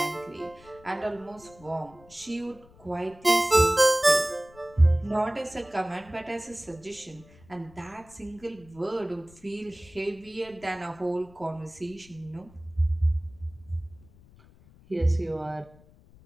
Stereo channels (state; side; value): noise; left; rumble, 25 dB below the sound